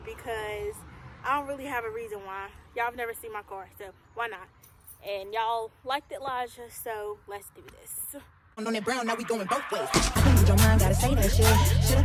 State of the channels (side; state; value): both; identical; correlation 1.00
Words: I don't really have a reason why. Y'all have never seen my car, so why not? And y'all liked it, Elijah, so let's do this. On that brown, now we going both ways. With your mind, gotta say that shit. Should I